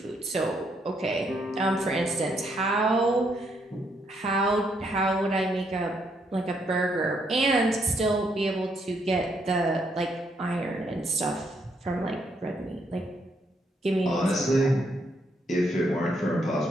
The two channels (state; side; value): normal; both; correlation 0.74